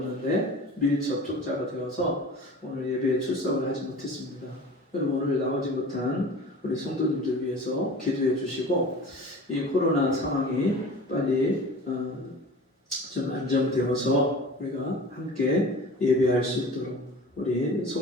밀접촉자가 되어서 오늘 예배에 출석을 하지 못했습니다. 여러분 오늘 나오지 못한 우리 성도님들 위해서 기도해 주시고 이 코로나 상황이 빨리 좀 안정되어서 우리가 함께 예배할 수 있도록 우리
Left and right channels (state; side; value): normal; both; correlation 0.39